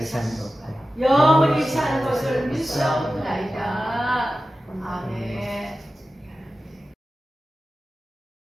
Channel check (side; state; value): both; normal; correlation 0.94